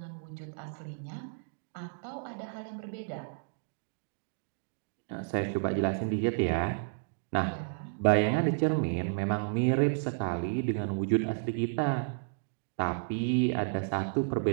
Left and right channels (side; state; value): left; silent; digital silence